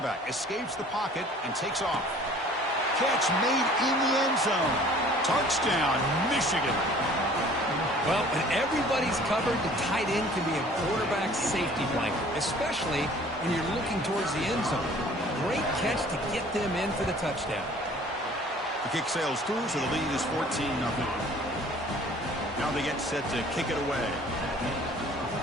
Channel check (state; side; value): normal; both; correlation 0.51